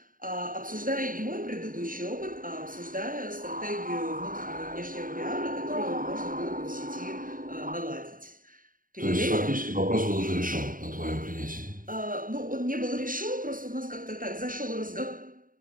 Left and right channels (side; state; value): left; late; 0.40 ms